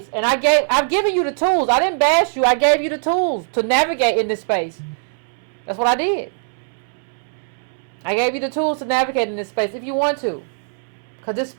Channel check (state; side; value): silent; left; 65 dB below the other